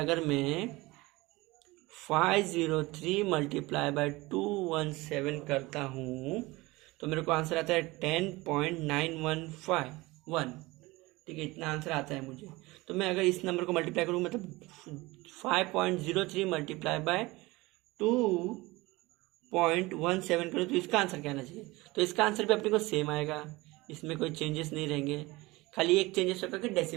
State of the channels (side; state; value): left; quieter; 21.5 dB